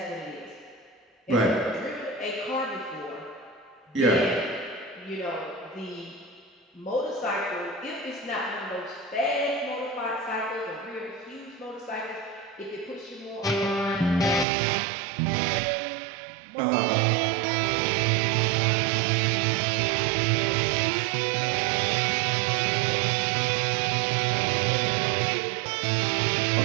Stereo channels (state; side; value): drops out; left; at 14.5 s